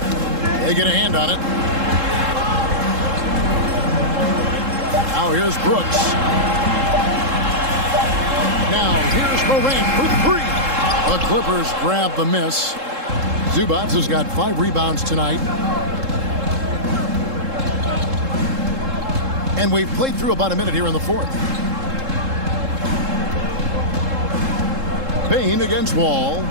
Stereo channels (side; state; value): left; late; 3.7 ms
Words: They get a hand on it. Now here's Brooks. Now here's Morant for three. The Clippers grab the miss. Zubac has got 5 rebounds tonight. And we've played through about a minute here in the fourth. Bane against Wall.